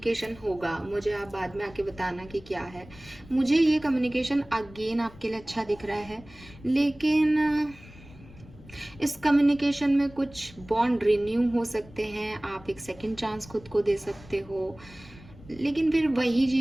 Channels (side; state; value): left; noise; rumble, 21 dB below the sound